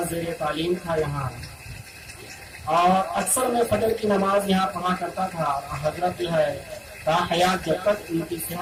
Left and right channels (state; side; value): identical; both; correlation 1.00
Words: زیر تعلیم تھا یہاں اور اکثر میں فجر کی نماز یہاں پڑھا کرتا تھا. حضرت جو ہے تا حیات جب تک ان کی